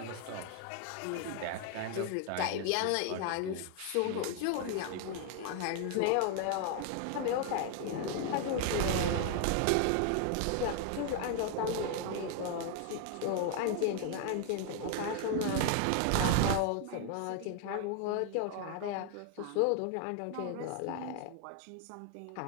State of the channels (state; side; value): different; both; correlation 0.00